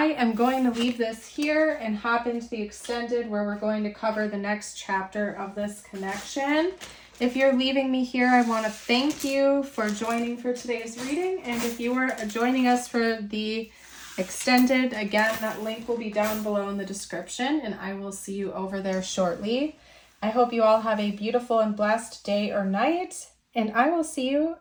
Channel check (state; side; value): identical; both; correlation 1.00